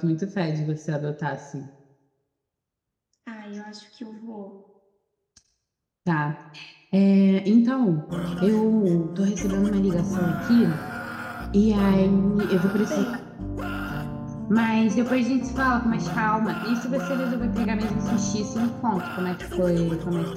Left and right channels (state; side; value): identical; both; correlation 1.00